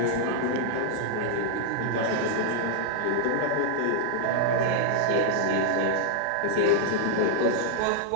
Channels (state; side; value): different; both; correlation -0.01